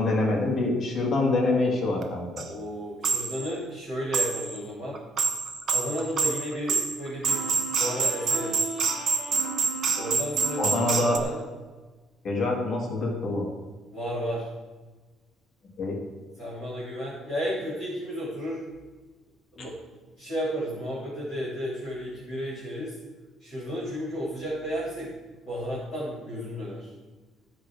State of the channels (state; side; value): normal; both; correlation 0.70